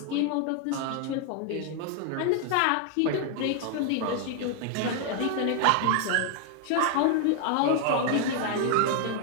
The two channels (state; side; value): different; both; correlation 0.00